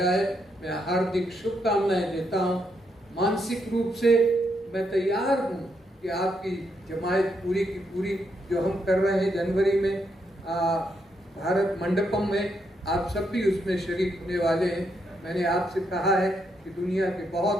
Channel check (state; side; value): normal; both; correlation 0.78